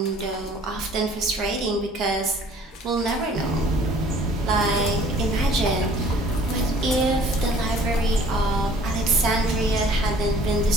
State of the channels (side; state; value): both; normal; correlation 0.53